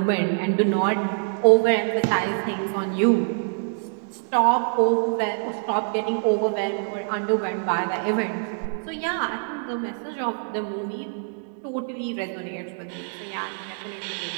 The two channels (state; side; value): silent; left; digital silence